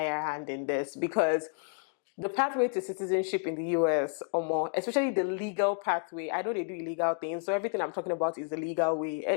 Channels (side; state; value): right; quieter; 39.3 dB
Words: hand in this because the pathway to citizenship in the US, or more, especially the legal pathway. I know they do illegal things, so everything I'm talking about is the legal way.